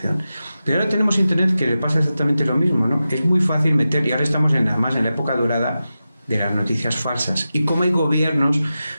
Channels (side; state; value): both; inverted; correlation -0.92